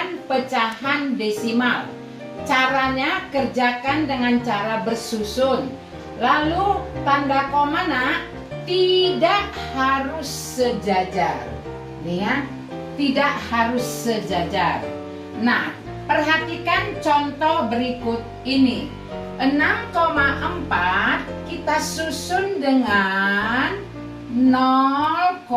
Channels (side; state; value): both; identical; correlation 1.00